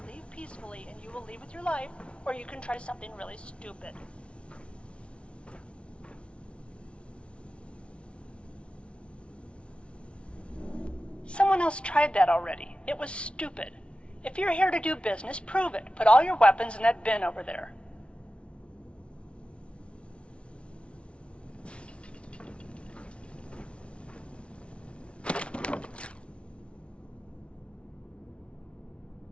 leave peacefully and you will leave with your life, or you can try something really stupid. Someone else tried that already. It was stupid. If you're here to do business, prove it. Put all your weapons in that bin over there.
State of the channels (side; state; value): right; late; 0.059 ms